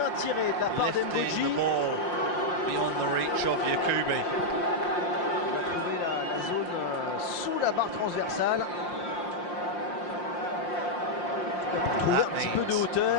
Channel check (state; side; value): late; right; 5.7 ms